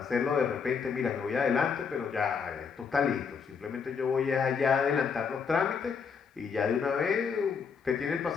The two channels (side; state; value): right; quieter; 6.0 dB